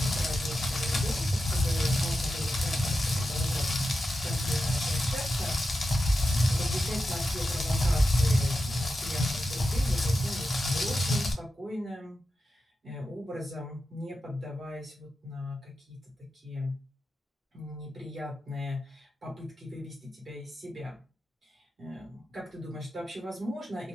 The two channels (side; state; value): both; normal; correlation 0.90